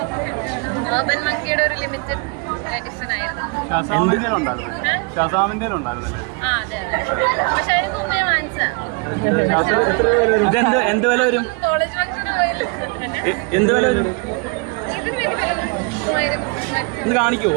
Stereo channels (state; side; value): quieter; left; 31.6 dB